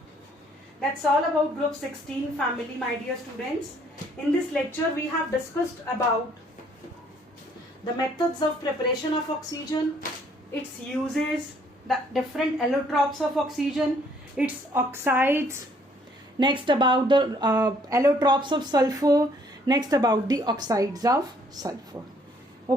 That's all about group 16 family, my dear students. In this lecture we have discussed about the methods of preparation of oxygen, its uses, the different allotropes of oxygen, its oxides, next about the allotropes of sulfur, next about the oxides of sulfur.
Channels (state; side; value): normal; both; correlation 0.64